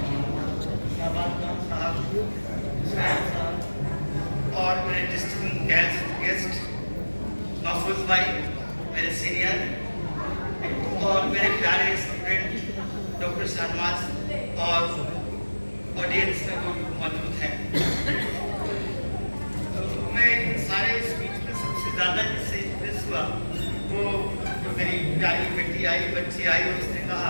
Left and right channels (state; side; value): inverted; both; correlation -1.00